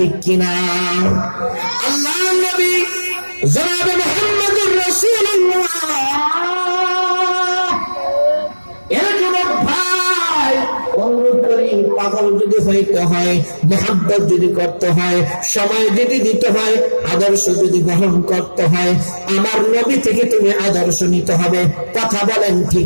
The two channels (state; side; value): inverted; both; correlation -1.00